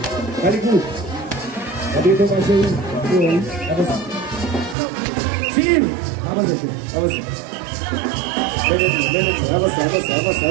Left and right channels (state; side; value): drops out; left; at 4.8 s